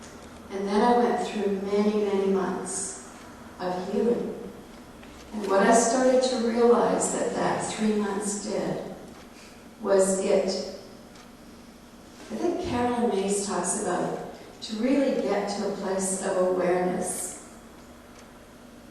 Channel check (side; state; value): both; identical; correlation 1.00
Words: And then I went through many, many months of healing. And what I started to realize that 3 months did was I think Carolyn Mays talks about to really get to a place of awareness.